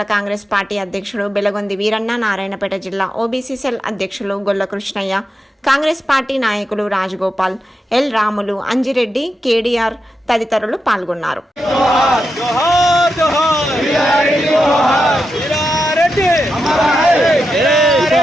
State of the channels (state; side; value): normal; both; correlation 0.87